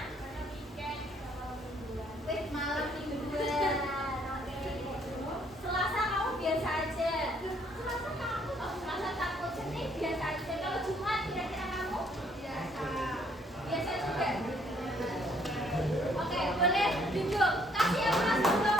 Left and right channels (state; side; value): normal; both; correlation 0.65